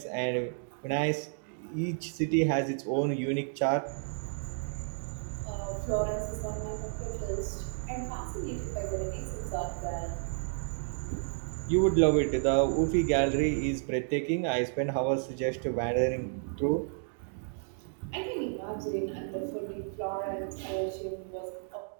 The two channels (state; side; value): silent; left; digital silence